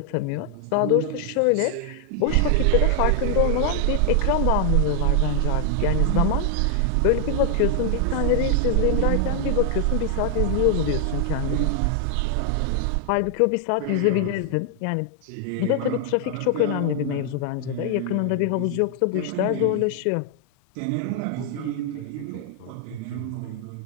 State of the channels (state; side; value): different; both; correlation 0.00